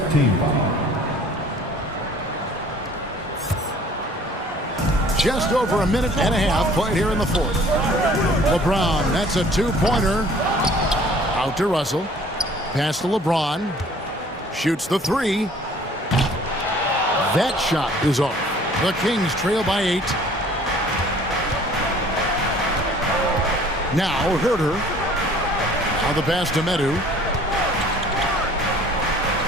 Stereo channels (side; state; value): both; normal; correlation 0.52